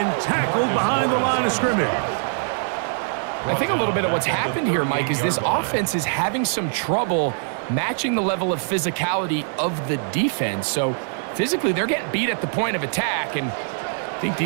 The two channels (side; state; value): left; silent; digital silence